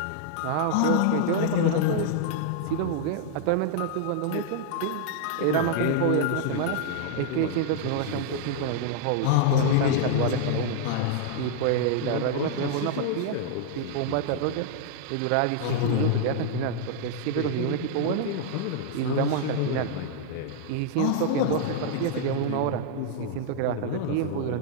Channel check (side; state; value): both; different; correlation -0.01